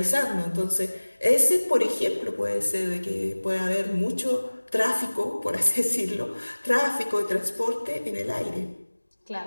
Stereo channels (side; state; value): both; inverted; correlation -1.00